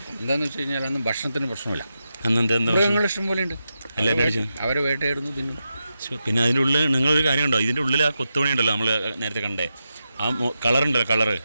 എന്താണെന്ന് വെച്ച് കഴിഞ്ഞാൽ അന്ന് ഭക്ഷണത്തിന് പ്രശ്നമില്ല. അന്ന് എന്താ മൃഗങ്ങൾ ഇഷ്ടം പോലെ ഉണ്ട്. അവരെ വേട്ടയായിരുന്നു തിന്നും. പിന്നെ അതിൻ്റെ ഉള്ളിൽ നിങ്ങളൊരു കാര്യം ഉണ്ടോ? ഇതിൻ്റെ ഉള്ളിൽ ആ കൊത്തുപണി ഉണ്ടല്ലോ, നമ്മൾ നേരത്തെ കണ്ടേ ആ കളറുണ്ടല്ലോ,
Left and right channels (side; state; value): both; inverted; correlation -0.88